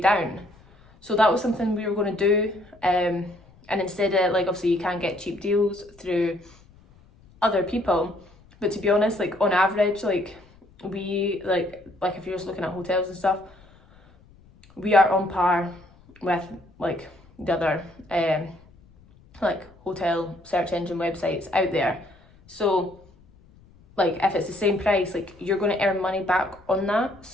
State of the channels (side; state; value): left; noise; rumble, 27 dB below the sound